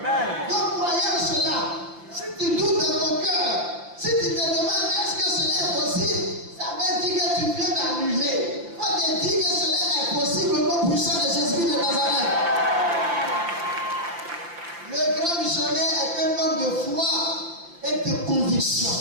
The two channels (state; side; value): late; left; 5.8 ms